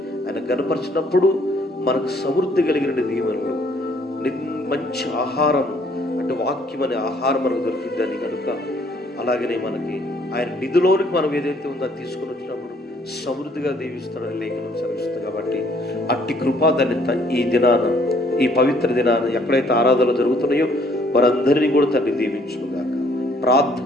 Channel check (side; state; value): both; normal; correlation 0.63